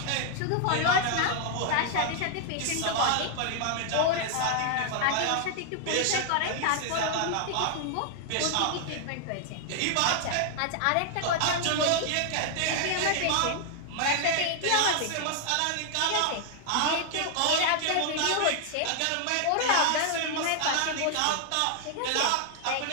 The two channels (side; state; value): both; different; correlation 0.00